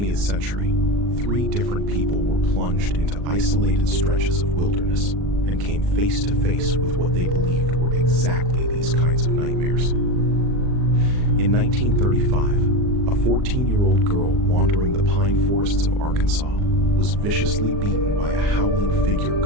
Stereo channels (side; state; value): left; late; 39 ms